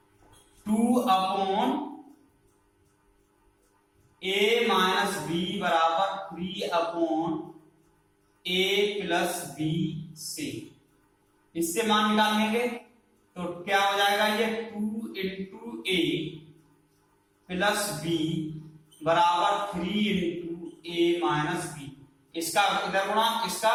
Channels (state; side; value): identical; both; correlation 1.00